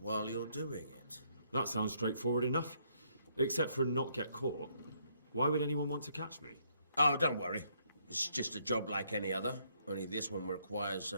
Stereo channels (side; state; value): both; inverted; correlation -0.71